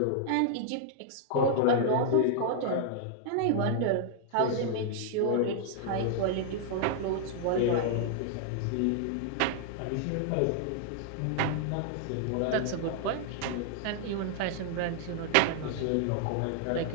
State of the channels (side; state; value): both; different; correlation -0.01